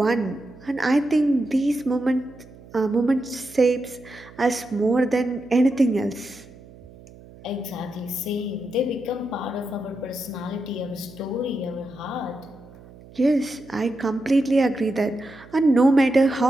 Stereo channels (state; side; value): noise; right; hum, 21 dB below the sound